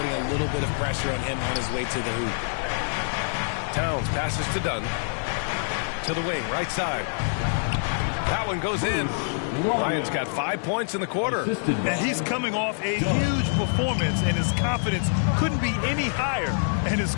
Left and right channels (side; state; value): right; silent; 61 dB below the other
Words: a little bit of pressure on him on his way to the hoop. Towns passes to Dunn. To the wing, right side. That one goes in. Ryan's got 5 points in the quarter. And he's coming off a huge performance, and his confidence couldn't be any higher. And his